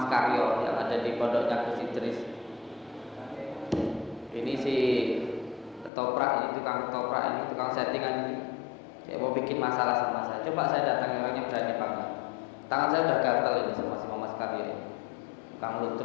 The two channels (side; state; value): right; drops out; at 5.9 s